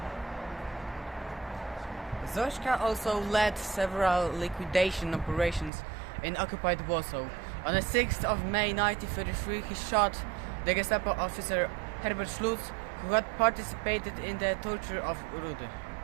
Zośka also led several liquidation operations in occupied Warsaw. On the 6th of May 1933, he shot the Gestapo officer Herbert Schlutz, who had participated in the torture of Rudy.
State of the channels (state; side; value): drops out; left; at 5.7 s